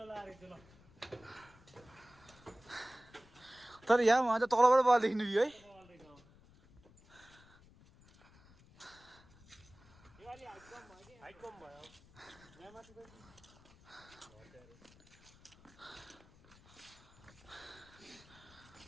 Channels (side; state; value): left; noise; rumble, 25 dB below the sound